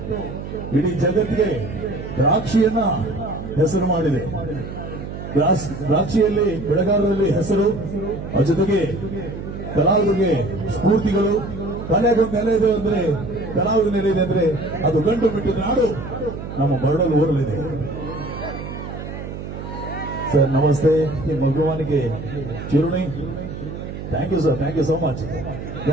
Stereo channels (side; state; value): right; noise; hum, 9 dB below the sound